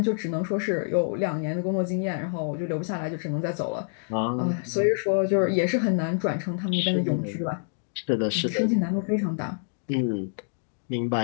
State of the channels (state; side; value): silent; right; digital silence